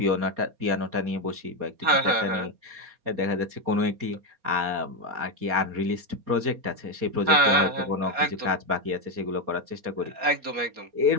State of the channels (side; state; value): left; late; 4.2 ms